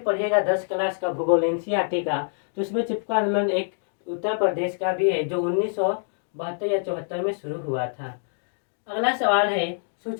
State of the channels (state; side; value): silent; right; digital silence